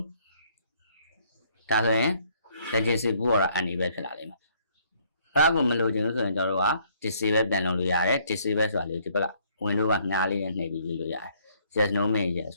ဒါဆိုရင် latency ဘူးတော့ enable ဖြစ်လာလိမ့်မယ်အဲ့ဒါကိုမလိုချင်ဘူးဆိုရင်ကျွန်တော်တို့က disable ပြန်လုပ်လို့ရတယ် disable ဆိုတာလေဒီဘက်က window ကညားလေးနဲ့နှိပ်ပြီးလုပ်လို့ရတယ် yes no main yes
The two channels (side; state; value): both; inverted; correlation -0.65